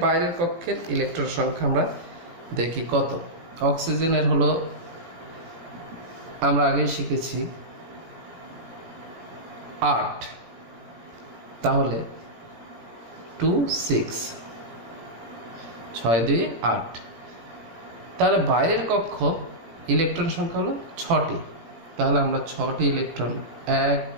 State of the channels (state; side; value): late; left; 18 ms